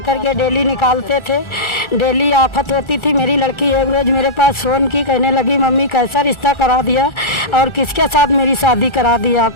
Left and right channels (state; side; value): late; right; 1.4 ms